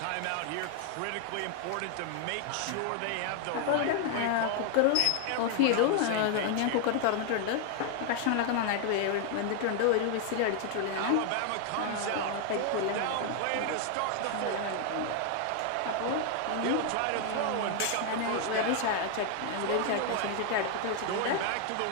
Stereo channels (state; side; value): different; both; correlation 0.00